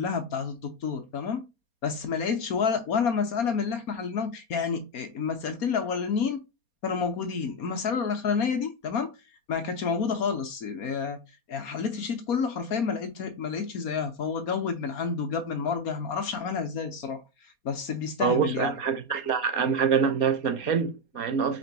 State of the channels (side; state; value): right; late; 4.3 ms